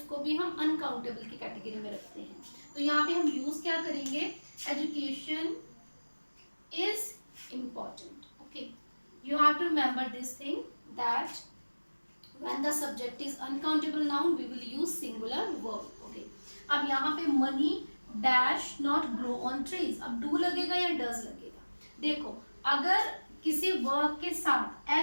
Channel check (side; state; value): both; inverted; correlation -1.00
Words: भी हम अनकाउंटेबल की कैटेगरी में रखते हैं। तो यहाँ पे हम यूज क्या करेंगे, education is important. Okay, you have to remember this thing that when the subject is uncountable noun we will use singular verb. Okay, अब यहाँ पे money dash not grow on trees, अब do लगेगा या does लगेगा। देखो अगर किसी verb के साथ